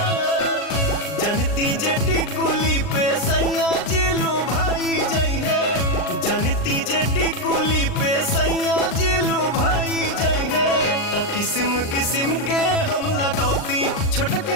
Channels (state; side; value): late; right; 39 ms